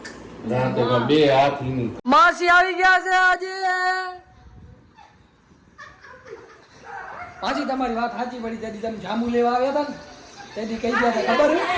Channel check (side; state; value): both; identical; correlation 1.00